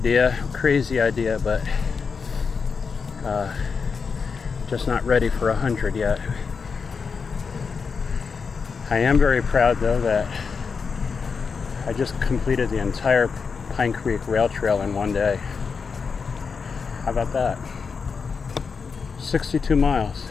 crazy idea, but just not ready for 100 yet. I am very proud, though, that I just completed the entire Pine Creek Rail Trail in one day. How about that? 62 miles.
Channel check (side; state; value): right; quieter; 5.4 dB